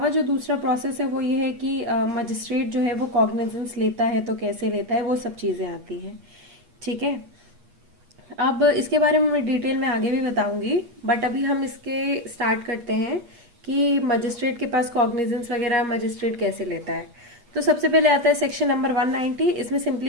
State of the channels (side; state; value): left; late; 8.4 ms